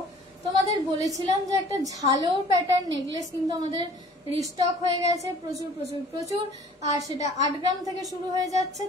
তোমাদের বলেছিলাম যে একটা ঝালর প্যাটার্ন নেকলেস কিন্তু আমাদের রিস্টক হয়ে গেছে প্রচুর। আর সেটা 8 গ্রাম থেকে শুরু হয়ে যাচ্ছে।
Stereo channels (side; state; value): both; normal; correlation 0.51